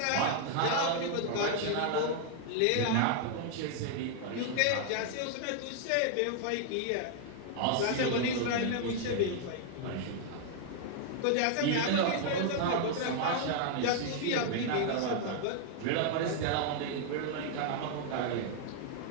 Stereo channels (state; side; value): different; both; correlation 0.00